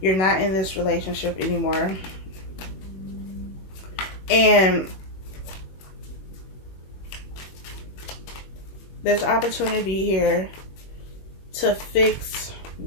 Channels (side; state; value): right; late; 21 ms